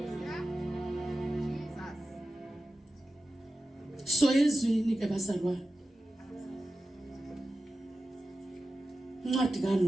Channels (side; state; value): both; normal; correlation 0.93